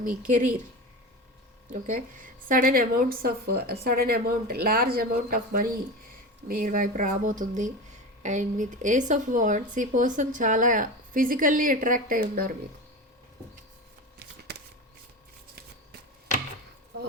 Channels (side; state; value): both; normal; correlation 0.26